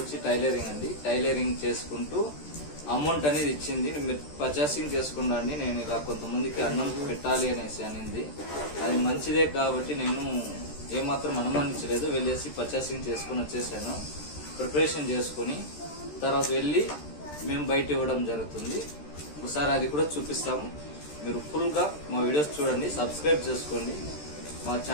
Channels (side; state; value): right; late; 13 ms